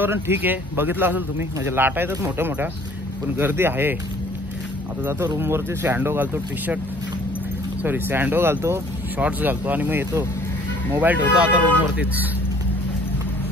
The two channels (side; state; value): both; normal; correlation 0.55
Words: ठीक आहे, बघितलं असेल तुम्ही. म्हणजे लाटा येतात मोठ्या मोठ्या, पण गर्दी आहे. आता जातो रूमवरती, सँडो घालतो, सँडो घालतो, शॉर्ट्स घालतो आणि मग येतो. मोबाईल ठेवतो आता रूमवरतीच.